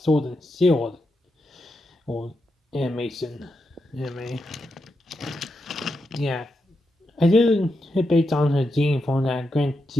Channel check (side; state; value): both; normal; correlation 0.85